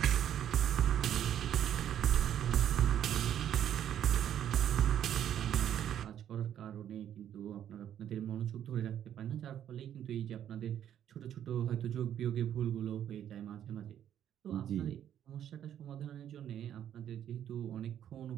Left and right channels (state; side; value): quieter; left; 10.3 dB